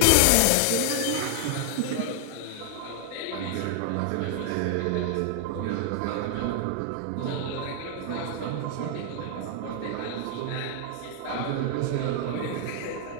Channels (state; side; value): different; both; correlation -0.01